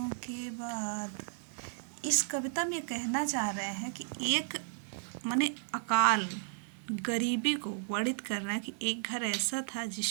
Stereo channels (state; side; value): silent; left; 55 dB below the other